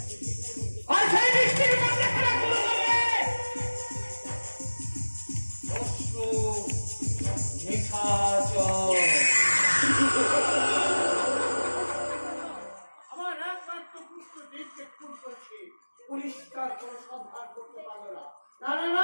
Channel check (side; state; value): both; inverted; correlation -1.00